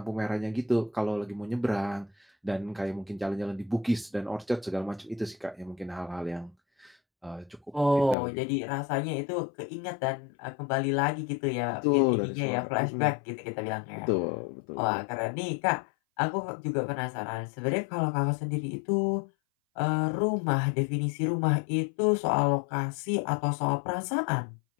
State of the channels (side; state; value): right; drops out; at 8.2 s